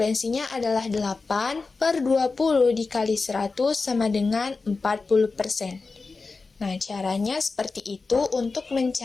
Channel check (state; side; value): quieter; right; 4.1 dB